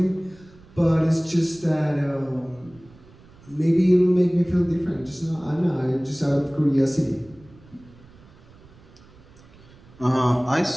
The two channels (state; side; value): noise; right; rumble, 25 dB below the sound